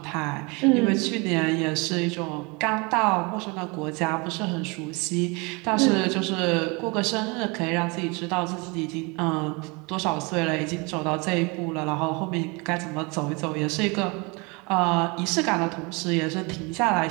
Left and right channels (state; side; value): quieter; left; 28.4 dB